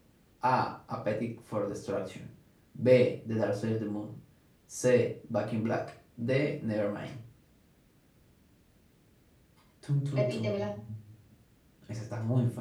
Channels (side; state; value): both; identical; correlation 1.00